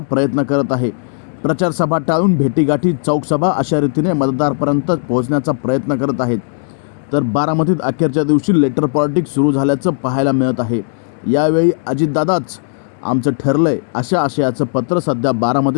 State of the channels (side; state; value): right; silent; digital silence